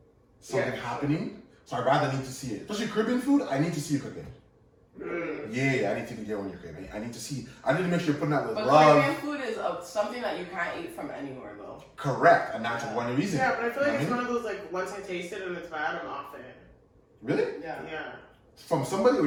something happening. So I rather need to see it. Especially Caribbean food, I need to see you cooking. Yeah, I need to get when you're cooking. I need to see. I need to make sure you're putting that with But love. Caribbean food is something that you can't eat from anywhere though. Correct, and that's one reason. Yeah, but I feel like You it's know one of those like once I taste it and it's bad, I'm off it. Really? Yeah. Yeah, From somebody or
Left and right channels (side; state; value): both; identical; correlation 1.00